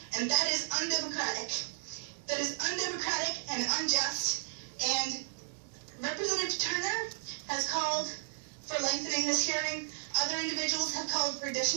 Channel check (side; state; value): left; silent; digital silence